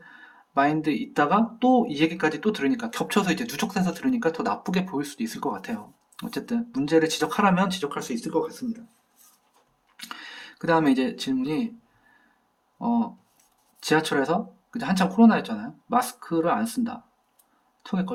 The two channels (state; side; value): identical; both; correlation 1.00